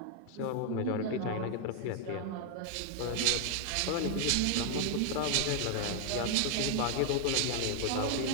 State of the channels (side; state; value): both; different; correlation 0.00